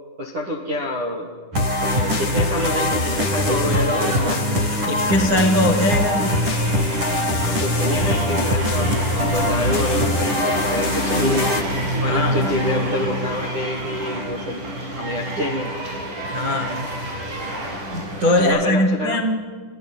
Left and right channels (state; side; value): late; left; 10 ms